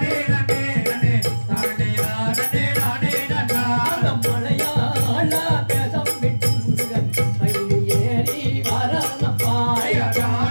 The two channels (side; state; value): both; inverted; correlation -1.00